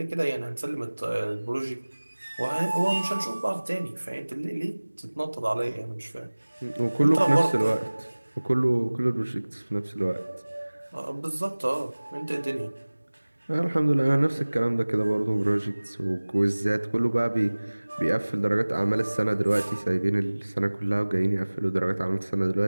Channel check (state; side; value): inverted; both; correlation -1.00